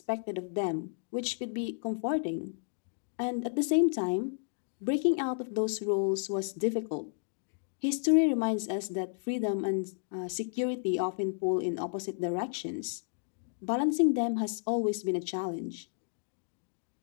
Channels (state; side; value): silent; right; digital silence